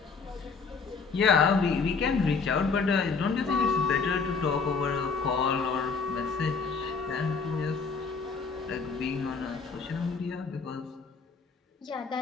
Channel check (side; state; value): right; quieter; 5.0 dB